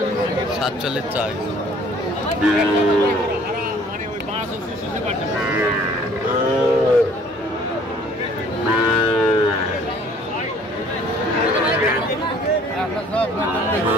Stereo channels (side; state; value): both; normal; correlation 0.55